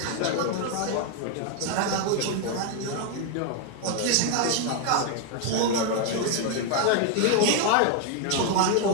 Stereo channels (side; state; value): both; different; correlation 0.01